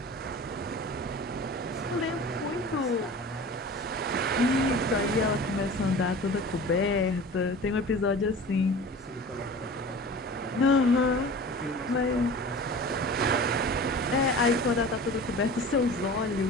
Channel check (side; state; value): both; normal; correlation 0.38